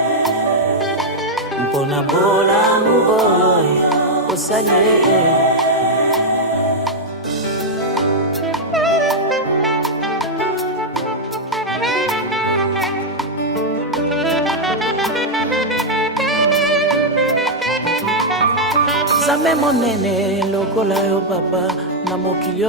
mpona bolamu oyo osali ye. Nzambe monene lokola yo papa, na mokili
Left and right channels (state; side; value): normal; both; correlation -0.02